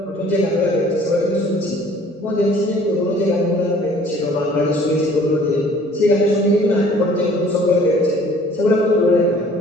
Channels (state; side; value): normal; both; correlation 0.54